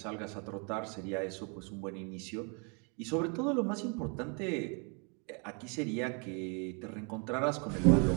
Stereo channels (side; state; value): left; quieter; 36.0 dB